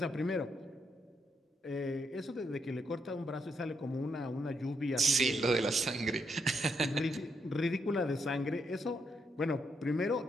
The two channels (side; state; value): both; normal; correlation 0.78